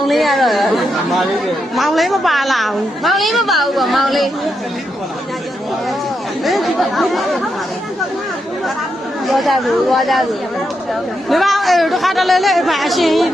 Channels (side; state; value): both; normal; correlation 0.83